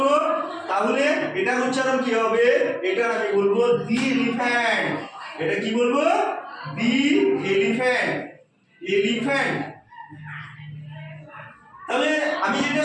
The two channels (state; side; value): identical; both; correlation 1.00